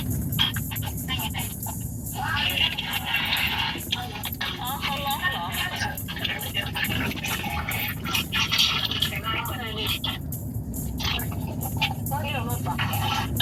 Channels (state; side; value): identical; both; correlation 1.00